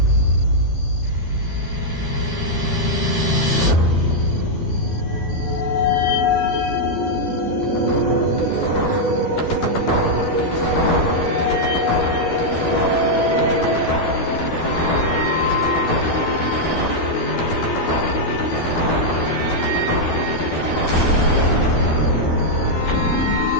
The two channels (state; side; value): late; right; 12 ms